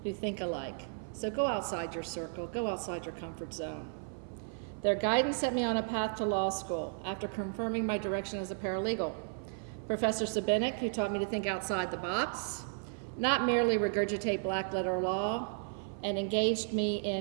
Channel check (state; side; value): silent; left; 55 dB below the other